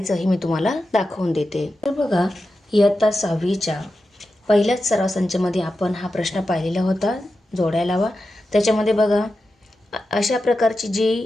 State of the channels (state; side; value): normal; both; correlation 0.91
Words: हे मी तुम्हाला दाखवून देते. तर बघा, इयत्ता 6वीच्या पहिल्याच सराव संचामध्ये आपण हा प्रश्न पाहिलेला होता, जोड्या लावा. त्याच्यामध्ये बघा, अशा प्रकारची जी